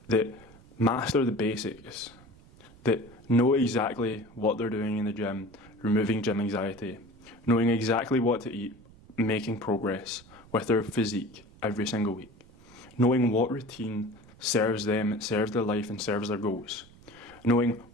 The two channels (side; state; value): right; noise; rumble, 24 dB below the sound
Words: that master the basics, that know exactly what they're doing in the gym, removing gym anxiety, knowing exactly what to eat, making progress with their physique every single week, knowing what routine serves them, serves their life and serves their goals, knowing